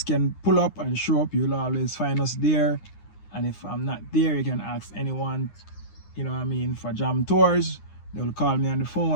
can pull up and show up. You'll always find us there. And if I'm not there, you can ask anyone, for Jam Tours. They will call me on the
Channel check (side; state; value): right; late; 9.8 ms